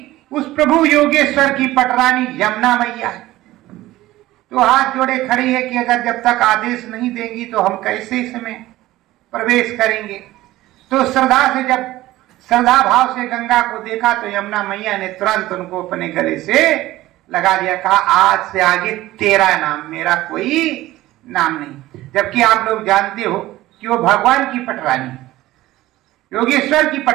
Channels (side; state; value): left; quieter; 16.5 dB